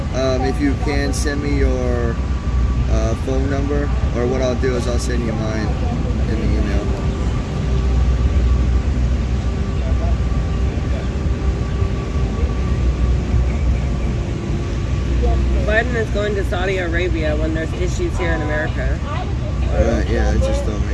If you can, send me your phone number, or what I'll do is I'll send you mine in the email. Biden is going to Saudi Arabia when there's issues here in America. Yeah, it just don't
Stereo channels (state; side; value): identical; both; correlation 1.00